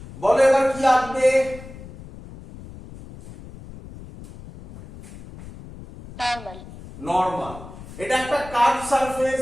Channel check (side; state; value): left; noise; rumble, 16 dB below the sound